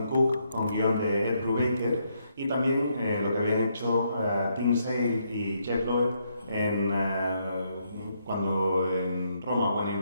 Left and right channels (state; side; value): inverted; both; correlation -0.76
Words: Cook con guión de Ed Brubaker, y también lo que habían hecho Tim Sale y Jeff Loeb cuando en Roma, When in